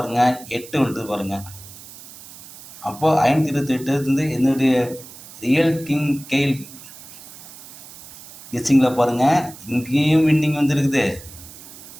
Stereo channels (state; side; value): noise; right; hiss, 17 dB below the sound